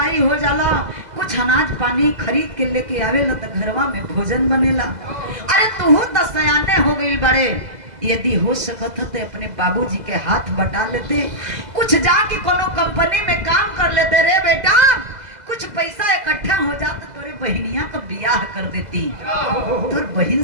हो जाला कुछ अनाज पानी खरीद के लेके आवेला तो घरवा में भोजन बनेला। अरे तू तो सयाने हो गई बड़े, यदि हो सकत तो अपने बाबूजी के हाथ बटा लेते, कुछ जाके कोनो कंपनी में काम कर लेते रे बेटा, कुछ पैसा इकट्ठा हो जाता तोरे बहनिया का ब्याह कर देती। तोर बहन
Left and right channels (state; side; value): late; left; 2.0 ms